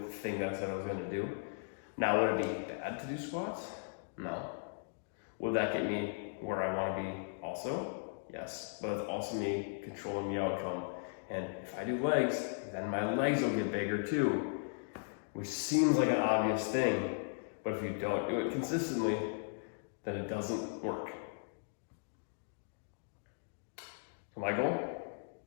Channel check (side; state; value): right; silent; digital silence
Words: the thing that I said I was gonna do. Now, would it be bad to do squats? No. Would that get me where I wanna be also? Yes, but it's also me controlling the outcome. And if I do legs, then my legs will get bigger too, which seems like an obvious thing, but if you don't do it consistently, then it doesn't work. So my goal